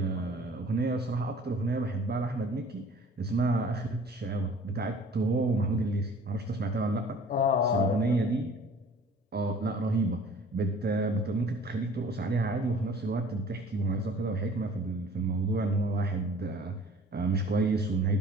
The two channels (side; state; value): both; normal; correlation 0.50